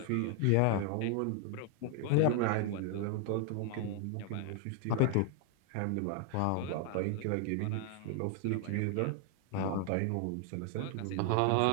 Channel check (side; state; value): both; different; correlation 0.00